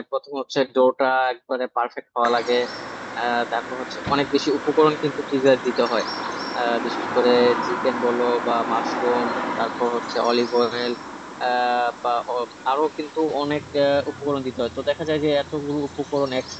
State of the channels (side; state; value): both; identical; correlation 1.00